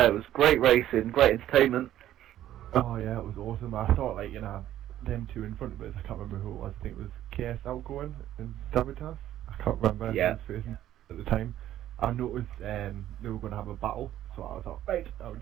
It was great racing, great entertainment. Oh yeah, it was awesome. I thought like, them two in front of us, I can't remember who it was. I think it was KS Outgoing and Sabotage. I can't remember who was first at the time. I noticed they were going to have a battle, so I thought, right, I would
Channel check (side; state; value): left; quieter; 12.5 dB